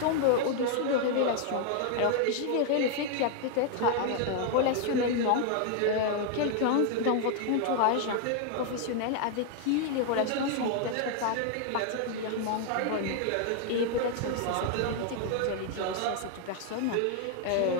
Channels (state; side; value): different; both; correlation 0.00